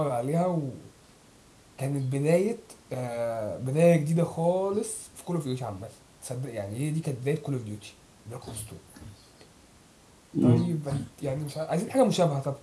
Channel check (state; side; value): identical; both; correlation 1.00